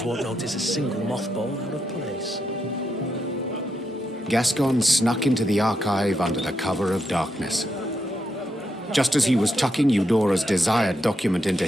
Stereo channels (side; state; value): both; normal; correlation 0.82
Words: won't notice a single mothball out of place. Gascon snuck into the archive under the cover of darkness. Just as he was tucking Eudora's desired document into